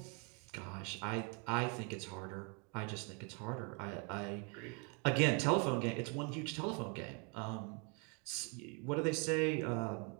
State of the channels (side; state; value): left; quieter; 35.2 dB